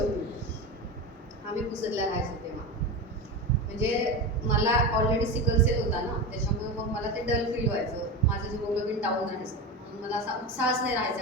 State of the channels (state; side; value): normal; both; correlation 0.22